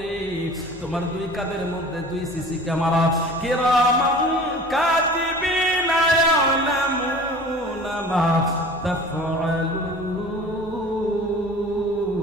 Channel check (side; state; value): both; normal; correlation 0.42